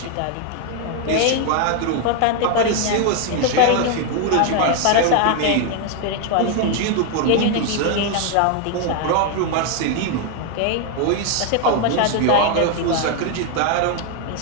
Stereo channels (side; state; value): both; different; correlation 0.01